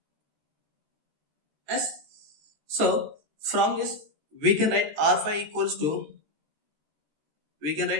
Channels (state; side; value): late; left; 14 ms